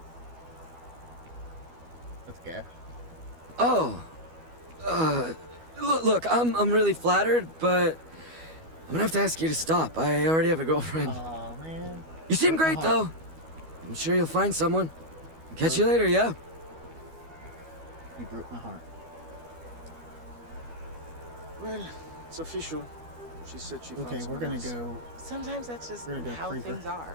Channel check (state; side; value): late; left; 12 ms